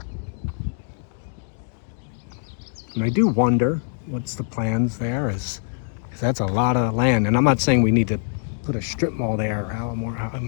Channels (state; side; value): silent; right; 63 dB below the other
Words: And I do wonder what's the plans there is, because that's a lot of land. And I'm not saying we need to put a strip mall there or how more, I